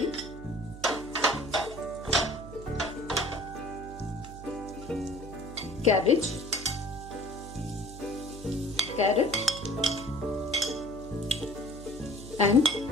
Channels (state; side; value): noise; right; hum, 13 dB below the sound